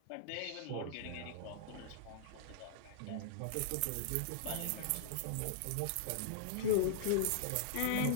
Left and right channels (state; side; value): different; both; correlation -0.01